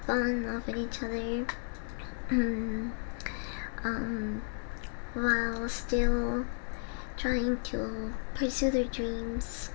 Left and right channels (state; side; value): silent; right; digital silence